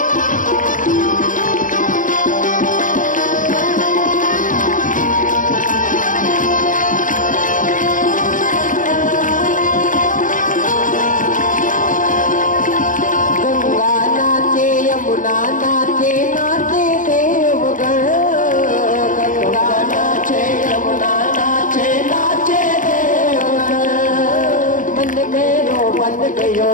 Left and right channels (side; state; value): right; late; 0.38 ms